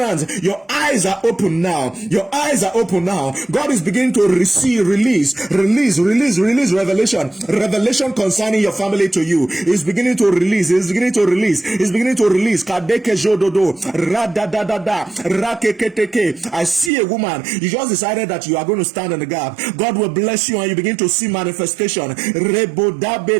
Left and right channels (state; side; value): drops out; left; at 16.9 s